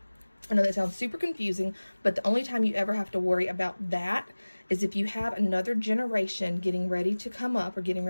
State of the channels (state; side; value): inverted; both; correlation -1.00